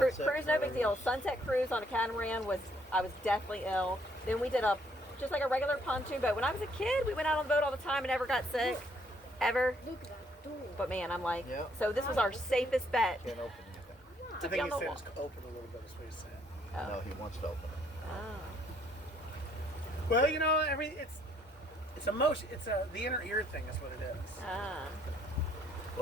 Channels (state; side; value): normal; both; correlation 0.67